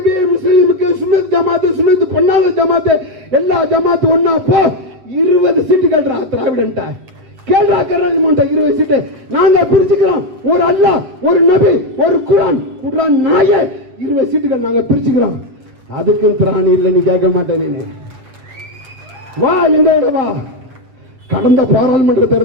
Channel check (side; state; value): left; late; 8.1 ms